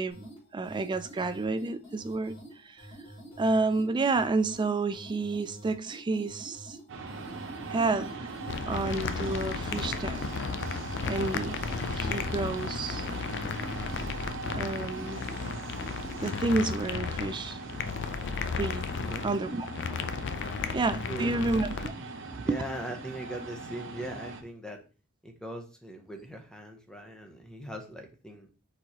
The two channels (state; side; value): normal; both; correlation 0.53